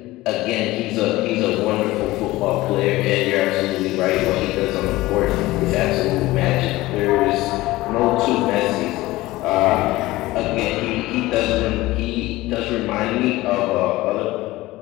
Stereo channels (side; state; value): right; quieter; 18.5 dB